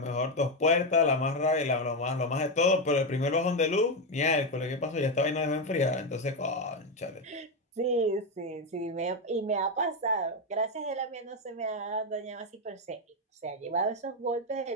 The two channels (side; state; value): both; normal; correlation 0.08